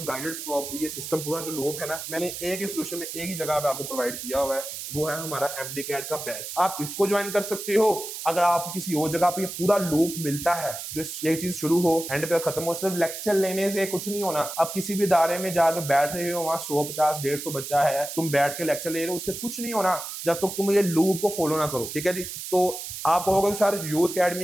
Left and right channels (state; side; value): noise; right; hiss, 8 dB below the sound